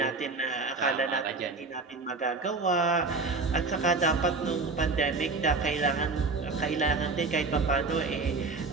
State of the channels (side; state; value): left; quieter; 3.9 dB